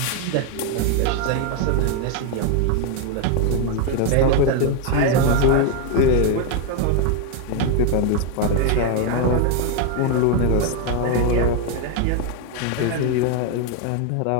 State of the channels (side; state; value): both; different; correlation 0.01